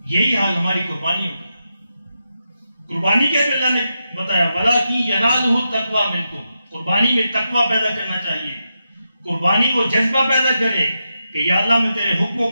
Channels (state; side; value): inverted; both; correlation -0.86